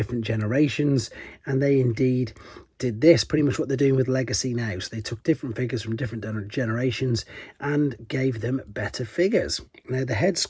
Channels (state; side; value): identical; both; correlation 1.00